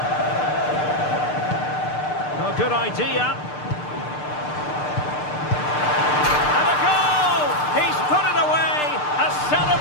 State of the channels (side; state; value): right; late; 6.7 ms